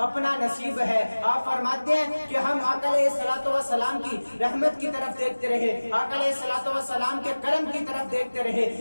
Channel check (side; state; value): both; inverted; correlation -1.00